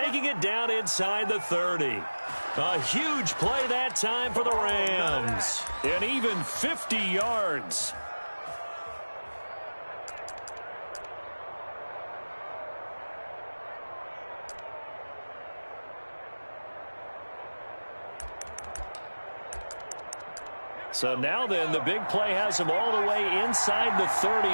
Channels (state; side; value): inverted; both; correlation -1.00